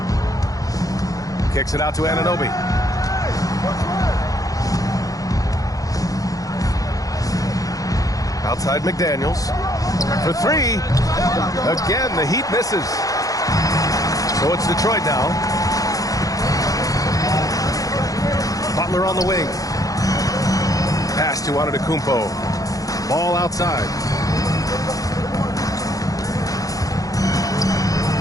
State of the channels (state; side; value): late; right; 0.17 ms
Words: Kicks it out to Anunoby. Outside McDaniels. For 3. Again, the Heat misses. So it's Detroit now. Butler on the wing. Pass to Antetokounmpo. Ball outside.